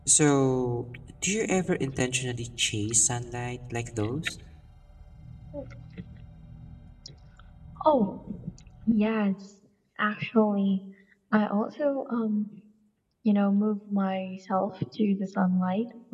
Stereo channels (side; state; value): both; identical; correlation 1.00